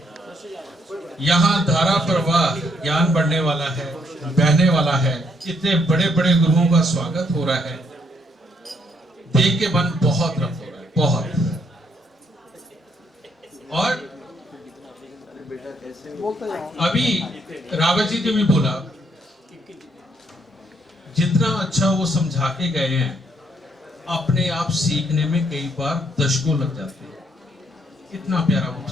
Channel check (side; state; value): both; normal; correlation 0.72